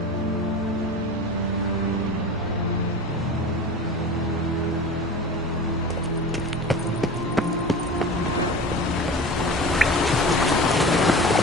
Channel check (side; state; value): both; normal; correlation 0.34